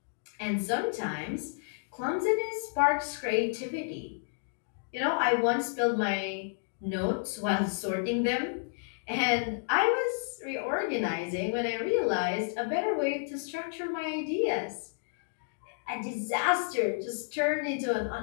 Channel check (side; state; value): right; silent; digital silence